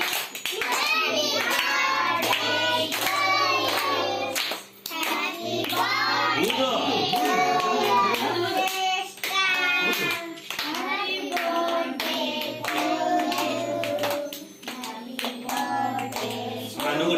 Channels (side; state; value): both; identical; correlation 1.00